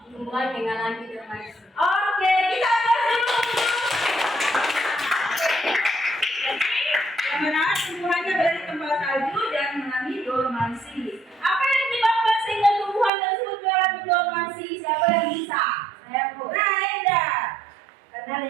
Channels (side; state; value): left; drops out; at 13.1 s